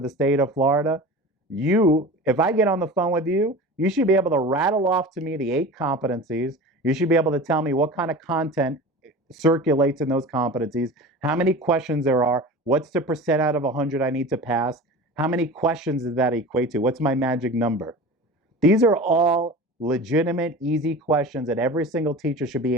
state of Florida, if I get on the phone with you, you should be able to rattle off to me the 8 competencies. You should be able to tell me what kind of content circulates in those competencies, how many questions there are, what's the percent out of 100 I need to pass, how many questions does that equate to, what's my magic number. These are all legitimate, easy questions that every single teacher should be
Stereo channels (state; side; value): normal; both; correlation 0.35